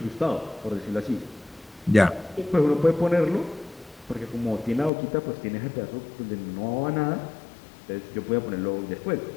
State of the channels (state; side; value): drops out; right; at 4.9 s